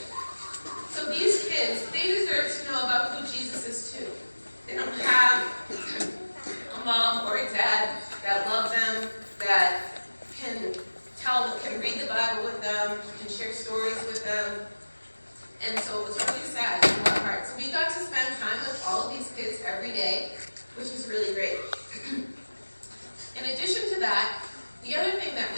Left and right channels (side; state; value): both; inverted; correlation -1.00